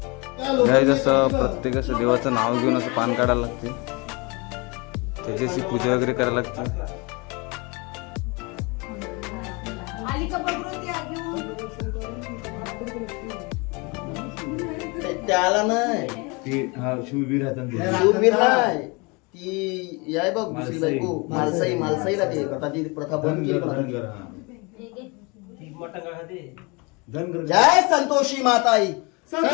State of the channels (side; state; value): right; quieter; 28.4 dB